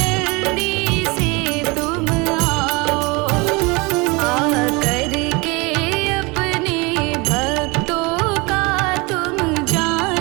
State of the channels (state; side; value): quieter; left; 26.3 dB